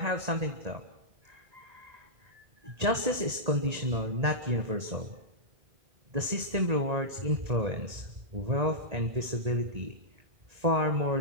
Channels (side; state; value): left; late; 1.8 ms